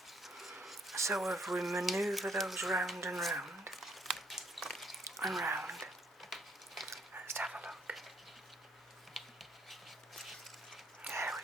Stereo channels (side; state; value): both; normal; correlation 0.68